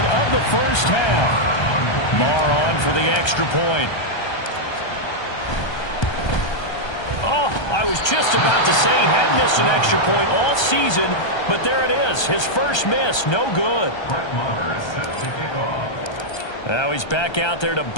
of the first half. Marr on for the extra point. I was just about to say he hadn't missed an extra point all season, but there it is. His first miss, no good. Now he's back out there to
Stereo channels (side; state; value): right; late; 1.3 ms